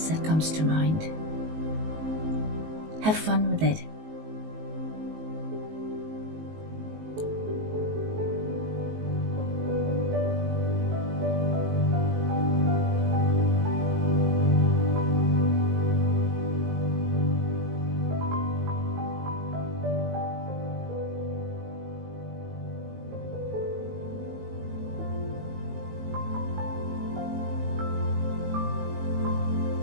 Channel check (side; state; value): left; late; 19 ms